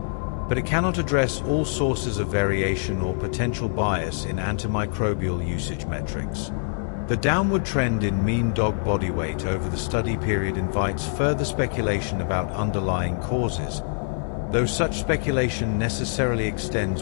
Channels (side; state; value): right; silent; digital silence